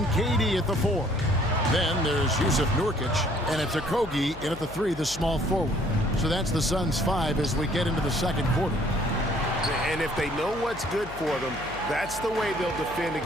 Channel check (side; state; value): left; noise; hum, 16 dB below the sound